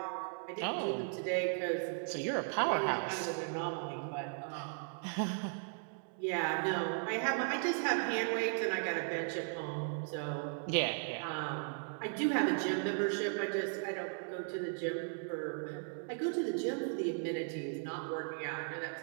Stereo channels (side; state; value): left; silent; 53 dB below the other